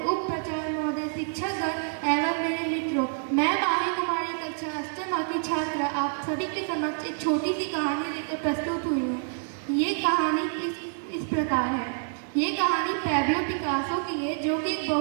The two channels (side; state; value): left; silent; 60 dB below the other